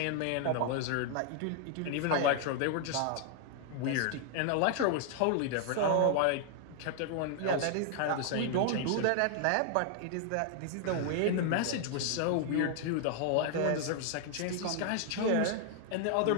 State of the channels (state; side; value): different; both; correlation 0.00